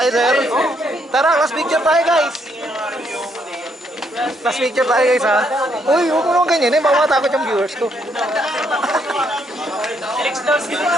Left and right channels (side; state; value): both; normal; correlation 0.73